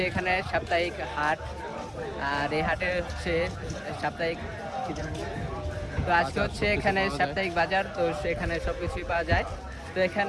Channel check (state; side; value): identical; both; correlation 1.00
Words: এখানে সাপ্তাহিক হাট আর এই হাটে হচ্ছে সাপ্তাহিক তো আজকে হচ্ছে এখানে সাপ্তাহিক বাজার তো সেখানে সবকিছুই পাওয়া যায়। তো